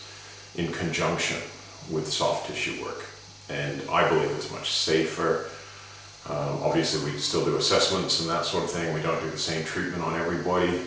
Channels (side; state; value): both; identical; correlation 1.00